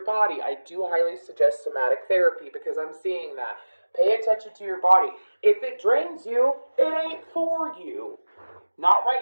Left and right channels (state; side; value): inverted; both; correlation -1.00